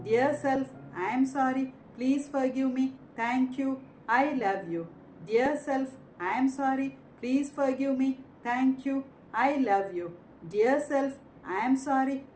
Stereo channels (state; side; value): identical; both; correlation 1.00